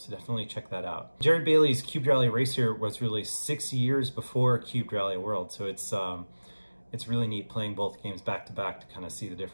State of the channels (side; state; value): both; inverted; correlation -1.00